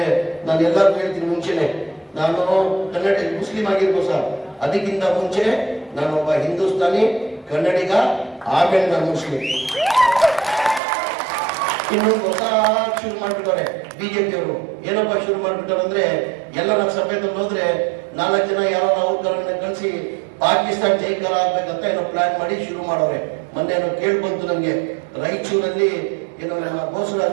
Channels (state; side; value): drops out; left; at 10.8 s